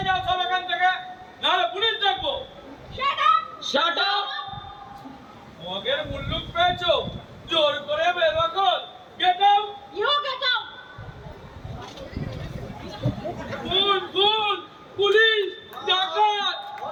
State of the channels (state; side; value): identical; both; correlation 1.00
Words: যাও সব এখান থেকে, নাহলে পুলিশ ডাকবো। Shut up! মগের মুল্লুক পেয়েছো, জোর করে বের কর। Get out! You get out. খুন খুন, পুলিশ, ডাকাত!